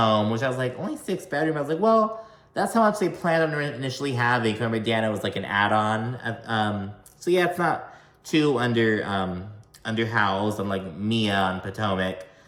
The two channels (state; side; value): identical; both; correlation 1.00